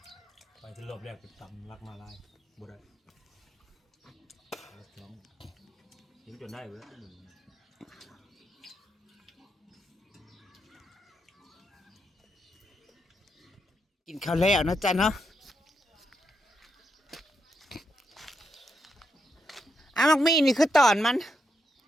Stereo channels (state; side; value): normal; both; correlation 0.81